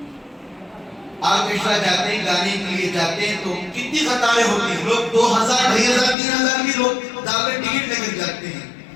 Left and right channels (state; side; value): drops out; right; at 6.2 s